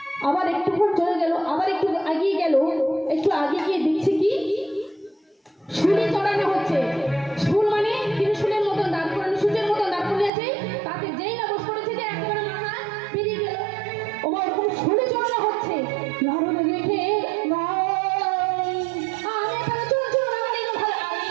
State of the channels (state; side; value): drops out; left; at 10.3 s